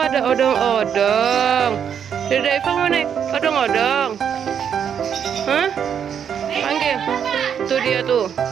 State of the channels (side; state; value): left; quieter; 8.1 dB